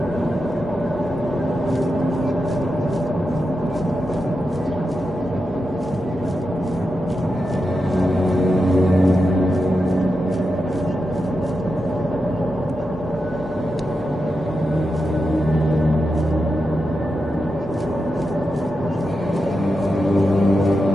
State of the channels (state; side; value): normal; both; correlation 0.88